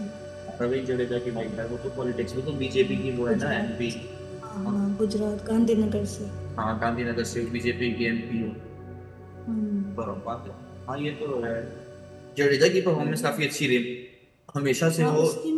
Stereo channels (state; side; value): identical; both; correlation 1.00